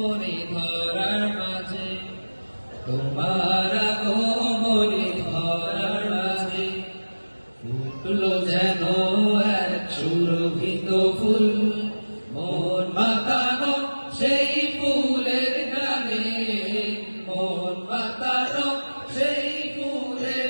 धरार माझे तुम्हारा गोमनी धरार माझे ফুটলো যেন এক সুরভিত ফুল মন মাতানো সেই ফুলের গানে মন মাতানো সেই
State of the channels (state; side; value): inverted; both; correlation -1.00